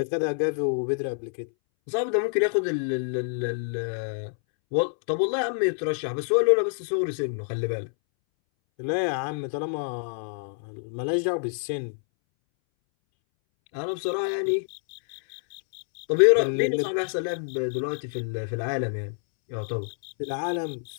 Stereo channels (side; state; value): right; silent; 60 dB below the other